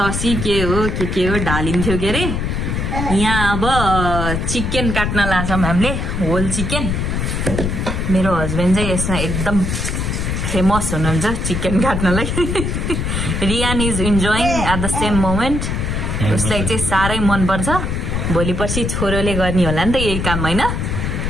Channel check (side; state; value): left; noise; rumble, 1 dB below the sound